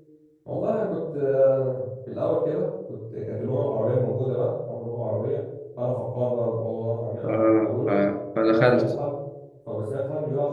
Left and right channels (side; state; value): both; identical; correlation 1.00